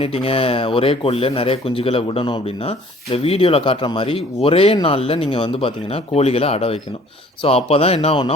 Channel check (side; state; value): both; normal; correlation 0.54